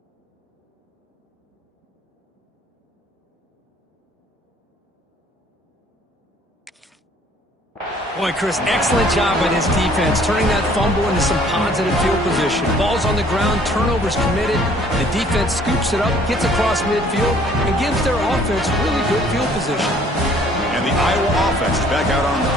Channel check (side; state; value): both; normal; correlation 0.57